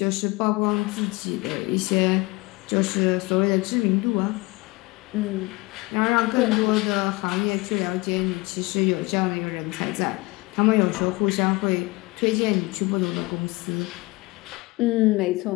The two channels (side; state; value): right; quieter; 23.7 dB